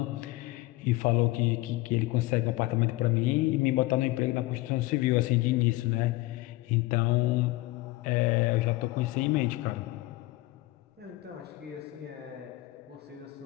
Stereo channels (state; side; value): quieter; right; 19.6 dB